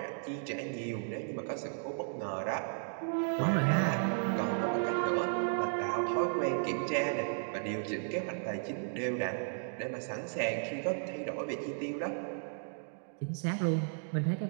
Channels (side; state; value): left; silent; digital silence